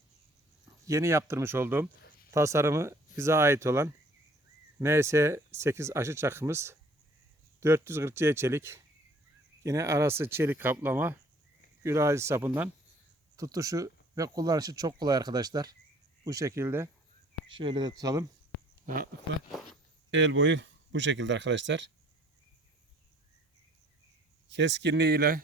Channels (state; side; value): normal; both; correlation 0.56